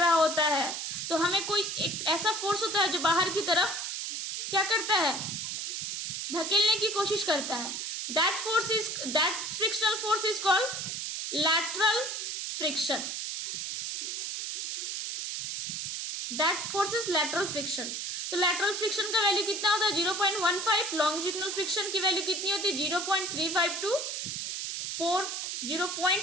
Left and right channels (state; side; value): noise; right; hiss, 4 dB below the sound